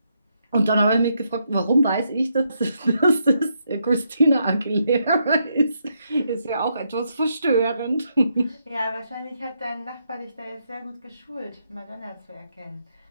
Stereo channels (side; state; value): both; inverted; correlation -0.78